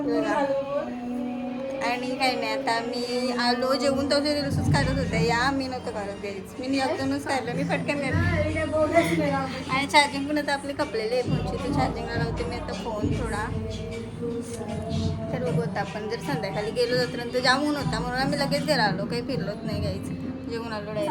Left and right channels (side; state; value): both; identical; correlation 1.00